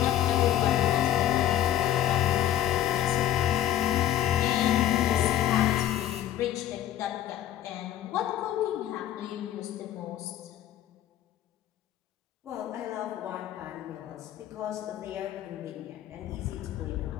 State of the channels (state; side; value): quieter; right; 12.0 dB